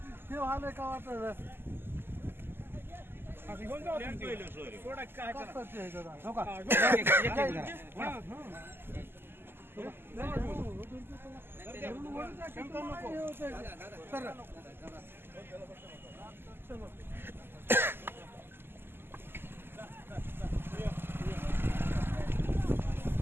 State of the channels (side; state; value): left; late; 0.11 ms